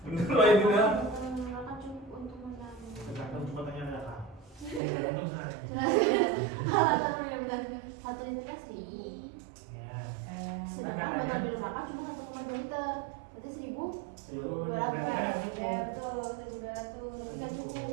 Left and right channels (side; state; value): left; drops out; at 4.8 s